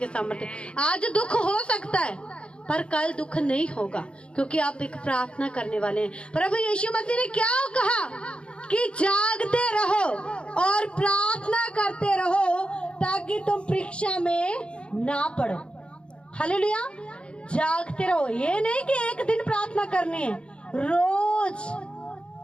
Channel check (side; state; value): right; late; 0.056 ms